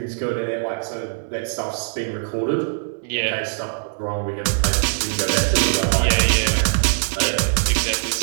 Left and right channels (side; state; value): left; silent; 64 dB below the other